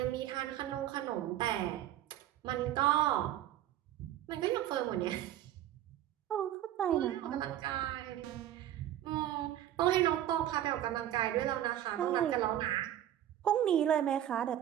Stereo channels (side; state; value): left; quieter; 12.1 dB